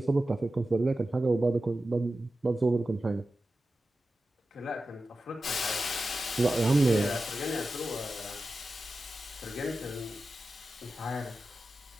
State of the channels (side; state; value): both; normal; correlation 0.93